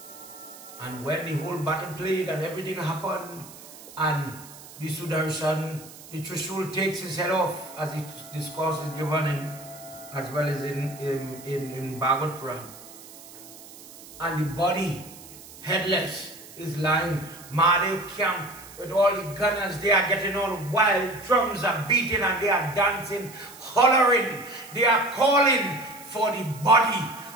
And when the whole battle played and everything happened, and the Sudarshan, the Trishul takes his head off, as the discourse is given in, as well as in Bhagavad Puran. And the body, headless, is lying. Mahadev camp with all the gunners, they are getting all wild, drums are beating and they are dancing, hollering. They are calling for the body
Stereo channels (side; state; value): right; noise; hiss, 18 dB below the sound